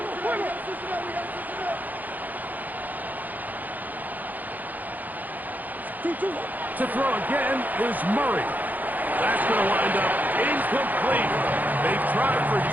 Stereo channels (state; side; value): late; left; 0.083 ms